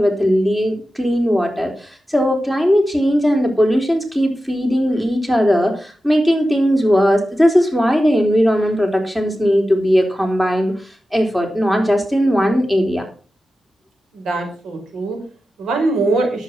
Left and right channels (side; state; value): both; normal; correlation 0.93